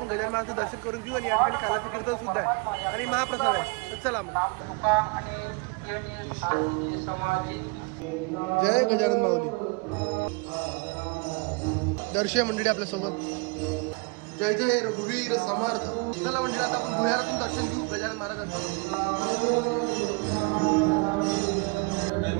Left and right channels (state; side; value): quieter; left; 30.2 dB